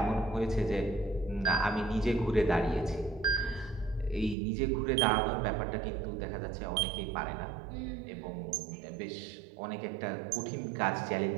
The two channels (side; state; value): left; drops out; at 4.4 s